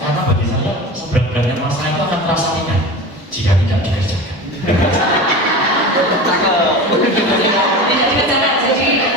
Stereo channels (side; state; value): both; normal; correlation 0.31